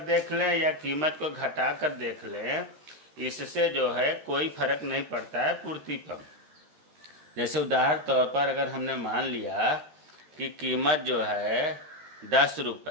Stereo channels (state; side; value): late; left; 13 ms